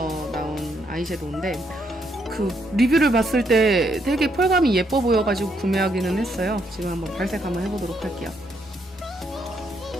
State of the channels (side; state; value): both; normal; correlation 0.74